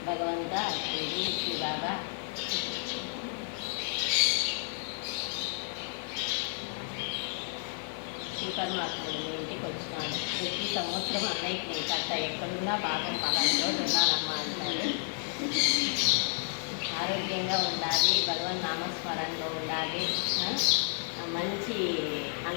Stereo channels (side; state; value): right; silent; 57 dB below the other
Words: భగవంతా శ్రీ బాబా శ్రీ పరమాత్ముడు మీ ఇంటికి వచ్చినాడు. ప్రతి సంవత్సరం అన్నయ్యకి నేను కట్ట ఎక్కడున్నా పాపం పలాంలో ఉన్నానమ్మా అంటారు. ఆరోగ్యంగా ఉండాలి, భగవన్ నామస్మరణలో ఉండాలి, మంచి